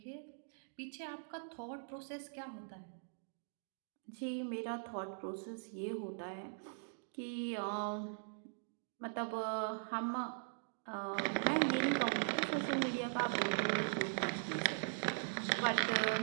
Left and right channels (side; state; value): left; silent; digital silence